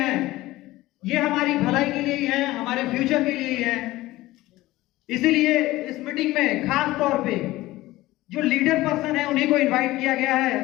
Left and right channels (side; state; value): right; quieter; 17.6 dB